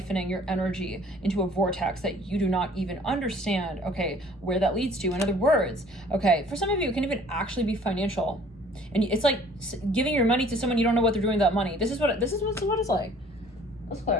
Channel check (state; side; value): normal; both; correlation 0.53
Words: your energy into a vortex that you do not even understand, okay, where that leads to. In other words, okay, for some of you, it can even actually be financial. And it's like giving your money to someone you don't know what they're doing with that money. This is what it's like. Let's